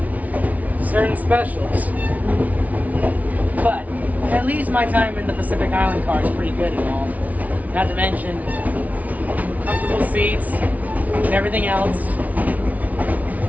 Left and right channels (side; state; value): left; late; 0.072 ms